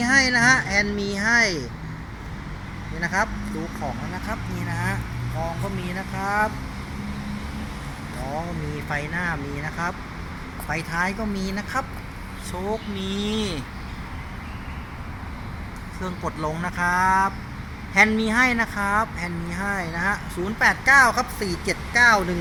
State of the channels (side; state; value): both; identical; correlation 1.00